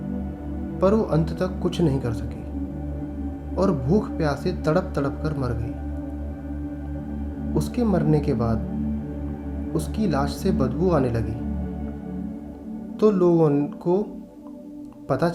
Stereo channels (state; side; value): identical; both; correlation 1.00